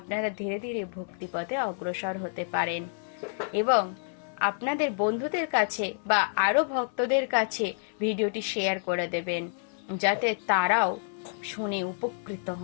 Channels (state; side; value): silent; right; 55 dB below the other